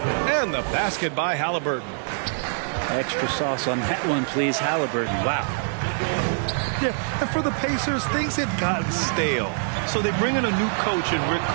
And the basket by Halliburton. Extra sauce on that one, please, Halliburton. Wow. Yeah, and for the Pacers, things had gotten stale. So they bring in a new coach in Rick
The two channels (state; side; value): silent; left; digital silence